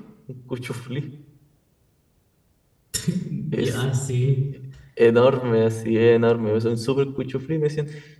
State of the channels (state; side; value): identical; both; correlation 1.00